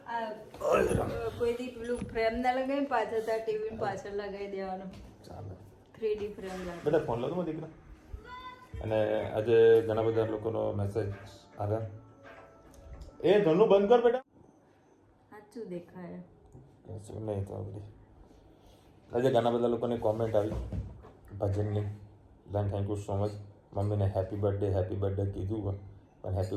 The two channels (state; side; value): identical; both; correlation 1.00